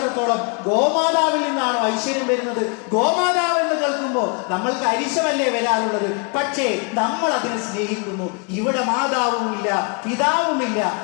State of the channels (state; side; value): quieter; right; 34.7 dB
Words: ഗോമാതാവിൽ നിന്നാണോ ഐശ്വര്യം വരുന്നത്? ഗോമാതാവ് എന്ന് കേൾക്കുമ്പോ നമ്മൾക്ക് അരിശമല്ലേ വരാറുള്ളത്? പക്ഷേ നമ്മൾ അതിനെ സ്നേഹിക്കുന്നു. ഇവിടെ മാതാവുമില്ല, പിതാവുമില്ല,